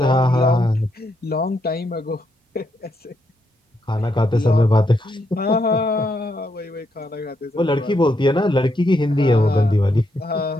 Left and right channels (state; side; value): normal; both; correlation 0.79